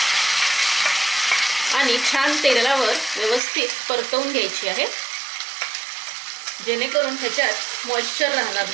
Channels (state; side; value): drops out; left; at 3.4 s